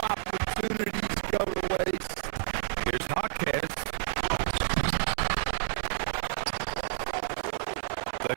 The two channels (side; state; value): left; silent; 58 dB below the other